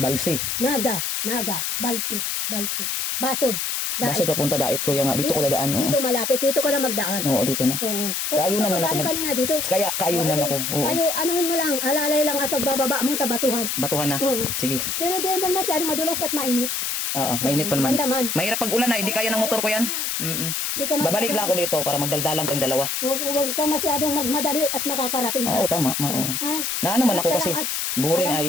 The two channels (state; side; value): noise; left; hiss, 1 dB below the sound